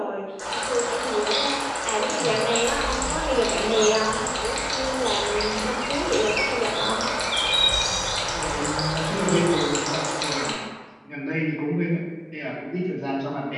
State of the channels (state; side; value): identical; both; correlation 1.00